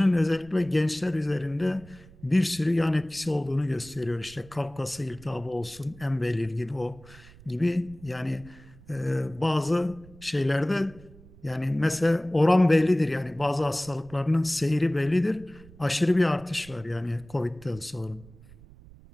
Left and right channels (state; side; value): noise; right; rumble, 22 dB below the sound